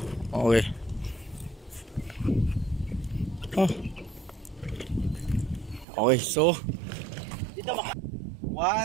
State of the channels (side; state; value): left; drops out; at 5.9 s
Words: Okay. Okay, so 1,